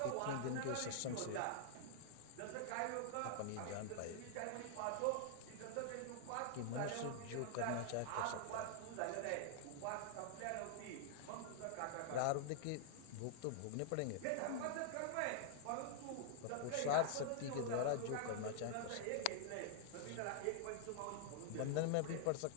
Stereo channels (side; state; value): both; different; correlation -0.01